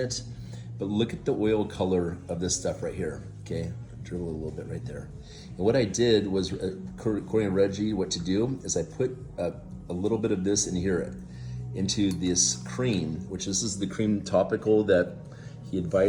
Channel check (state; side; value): identical; both; correlation 1.00